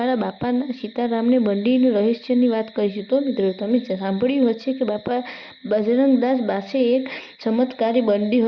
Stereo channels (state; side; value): identical; both; correlation 1.00